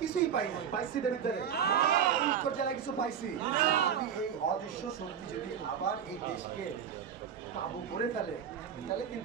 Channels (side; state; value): left; quieter; 8.3 dB